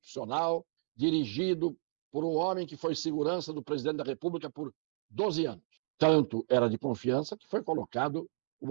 dirigido por um homem que foi segurança do presidente da República por 12 anos. Tanto era de confiança que foi colocado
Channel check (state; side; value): silent; left; digital silence